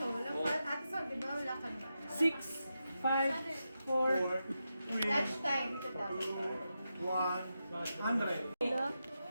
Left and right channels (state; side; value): inverted; both; correlation -0.88